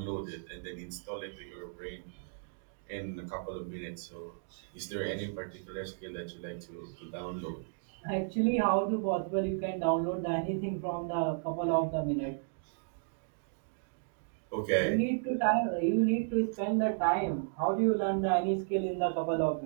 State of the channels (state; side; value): silent; left; digital silence